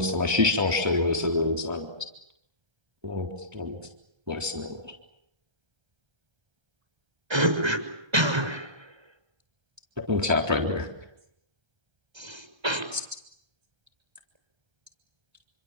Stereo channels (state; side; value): late; left; 1.3 ms